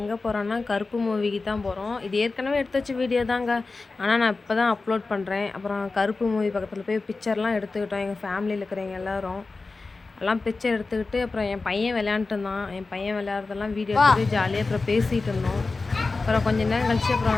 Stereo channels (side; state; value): right; quieter; 3.8 dB